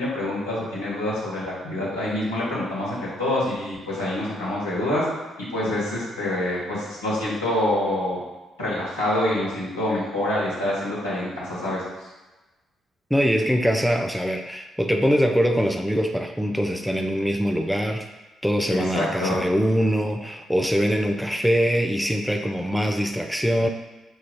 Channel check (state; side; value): normal; both; correlation 0.83